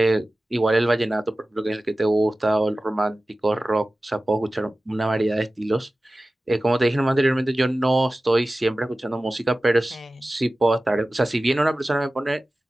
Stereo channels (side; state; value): both; normal; correlation 0.96